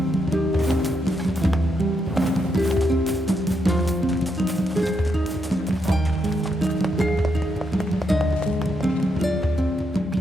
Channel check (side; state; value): both; normal; correlation 0.80